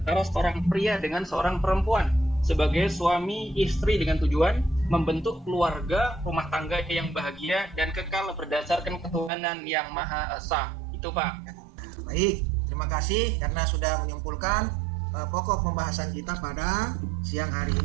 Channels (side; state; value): left; drops out; at 9.3 s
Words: seorang pria dengan seorang perempuan sebagai suami istri dengan tujuan membentuk keluarga rumah tangga yang bahagia dan kekal berdasarkan ketuhanan yang Maha Esa. Itu Pak. Baik, terima kasih karena sudah menyimpulkan pokok pembahasan kita pada siang hari